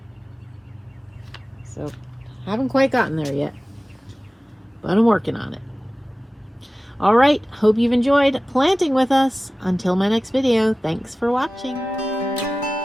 so haven't quite gotten there yet, but I'm working on it. All right, hope you've enjoyed planting with us. Until my next video, thanks for watching.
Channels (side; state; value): both; normal; correlation 0.97